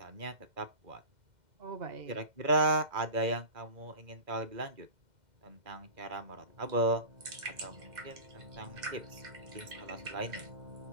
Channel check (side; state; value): left; late; 2.1 ms